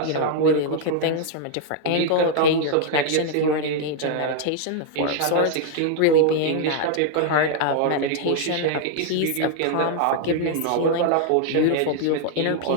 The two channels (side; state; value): both; different; correlation 0.00